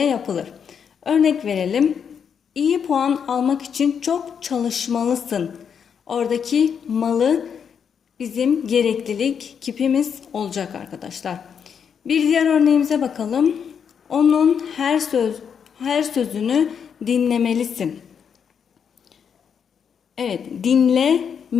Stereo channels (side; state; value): right; quieter; 7.3 dB